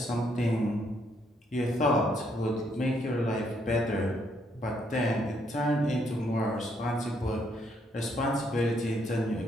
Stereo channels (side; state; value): both; normal; correlation 0.72